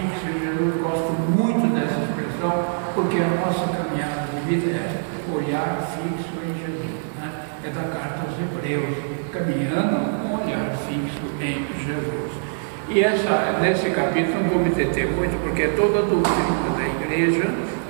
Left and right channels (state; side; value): silent; left; 58 dB below the other